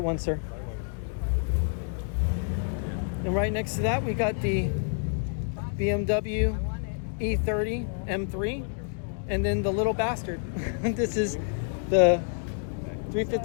one, sir. And right next to that, we got the BMW E30 M3, and then the little bastard. This is the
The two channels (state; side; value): silent; right; 59 dB below the other